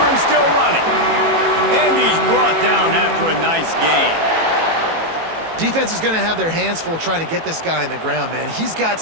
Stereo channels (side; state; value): left; late; 18 ms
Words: and still running. And he's brought down after a nice gain. Defense is going to have their hands full trying to get this guy on the ground, man. He's got